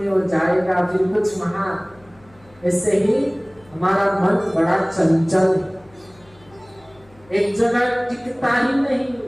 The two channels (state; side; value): noise; left; hum, 28 dB below the sound